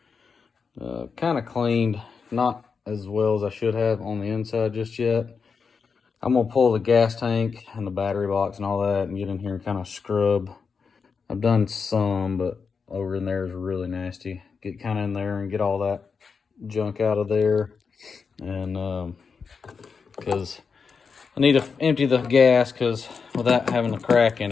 Kind of cleaned, not as well as I should have on the inside just yet. I'm gonna pull the gas tank and the battery box and all that and get in here and kind of scrub. I've done some, but over in there is really nasty. Get kind of in there and get all that junk out of there. And because I need to empty the gas, because without having a crack in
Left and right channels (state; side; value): quieter; right; 5.5 dB